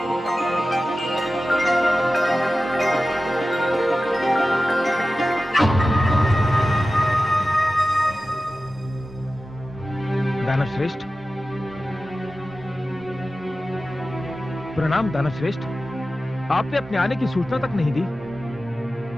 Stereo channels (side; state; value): both; normal; correlation 0.94